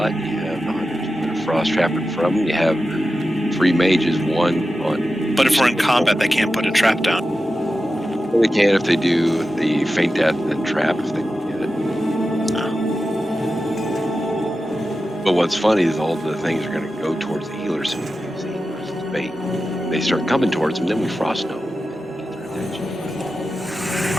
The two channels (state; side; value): normal; both; correlation 0.92